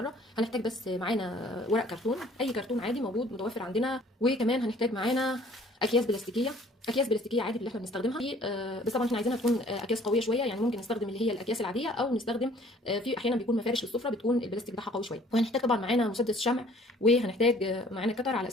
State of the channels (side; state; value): both; normal; correlation 0.55